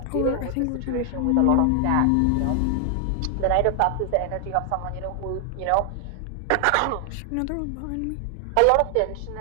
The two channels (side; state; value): both; different; correlation 0.00